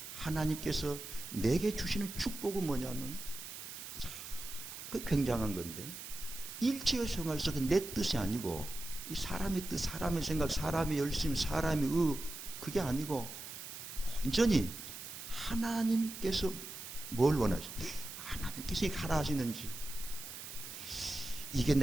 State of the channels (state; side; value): noise; right; hiss, 10 dB below the sound